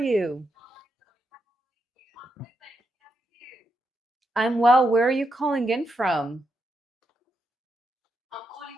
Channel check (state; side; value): normal; both; correlation 0.83